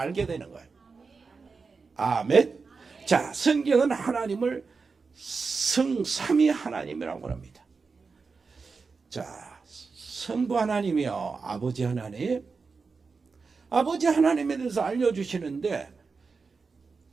되는 거예요. 아멘. 자, 성경은 하나님을 성삼위 하나님이라고 합니다. 자, 성부 하나님이요, 아버지 하나님. 아버지 하나님에 대해서 알려주시는데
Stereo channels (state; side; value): quieter; left; 4.7 dB